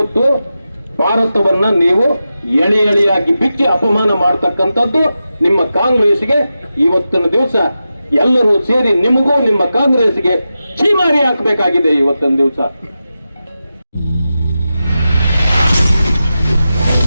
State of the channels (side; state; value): both; inverted; correlation -0.91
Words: ಭಾರತವನ್ನ ನೀವು ಎಳೆ ಎಳೆಯಾಗಿ ಬಿಚ್ಚಿ ಅಪಮಾನ ಮಾಡತಕ್ಕಂಥದ್ದು ನಿಮ್ಮ ಕಾಂಗ್ರೆಸ್ಗೆ ಇವತ್ತಿನ ದಿವಸ ಎಲ್ಲರೂ ಸೇರಿ ನಿಮಗೂ ನಿಮ್ಮ ಕಾಂಗ್ರೆಸ್ಗೆ ಛೀಮಾರಿ ಹಾಕಬೇಕಾಗಿದೆ ಇವತ್ತಿನ ದಿವಸ.